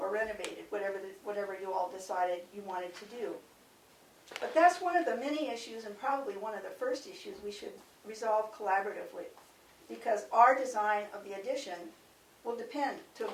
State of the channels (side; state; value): both; identical; correlation 1.00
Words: renovated, whatever you all decided you wanted to do. But that's one of the many issues, and probably one of the first issues we should resolve collaboratively, because our design of the addition will depend to a